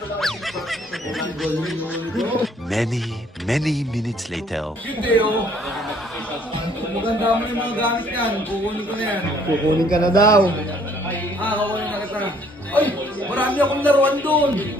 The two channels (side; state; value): both; normal; correlation 0.62